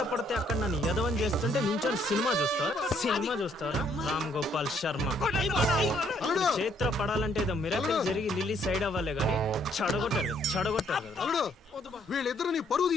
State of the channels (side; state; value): both; normal; correlation 0.68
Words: పడితే అక్కడ నన్ను యదవం చేస్తుంటే నించొని సినిమా చూస్తారా? రామ్ గోపాల్ శర్మ. చేత్ర పడాలంటే ఏదో మిరాకిల్ జరిగి లిల్లీ సైడ్ అవ్వాలే గానీ చెడగొట్టారు. వీళ్ళిద్దరు నీ పరువు